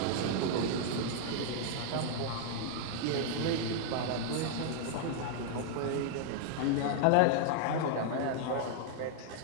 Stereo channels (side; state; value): both; different; correlation 0.00